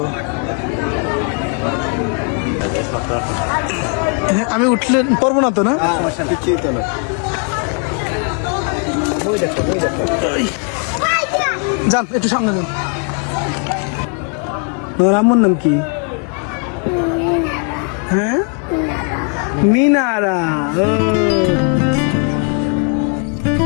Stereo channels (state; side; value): quieter; right; 39.3 dB